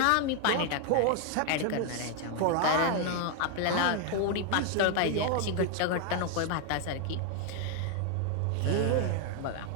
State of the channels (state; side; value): different; both; correlation 0.00